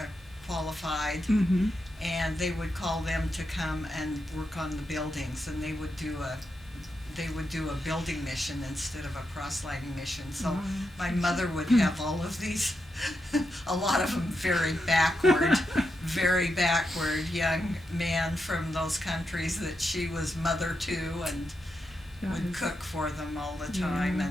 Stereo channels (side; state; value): both; normal; correlation 0.85